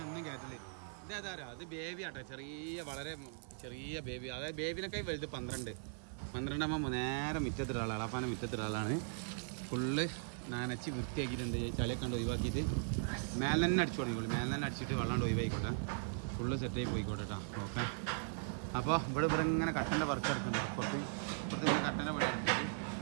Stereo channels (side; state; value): left; silent; 52 dB below the other